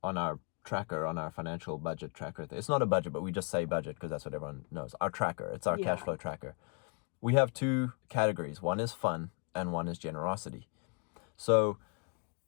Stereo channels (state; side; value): quieter; right; 35.3 dB